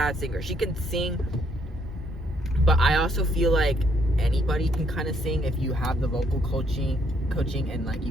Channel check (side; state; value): both; normal; correlation 0.70